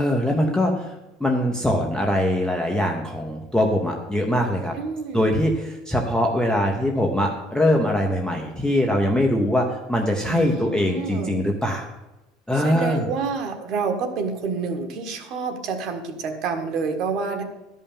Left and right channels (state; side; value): normal; both; correlation 0.70